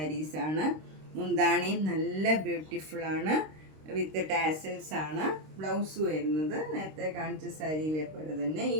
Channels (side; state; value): left; late; 26 ms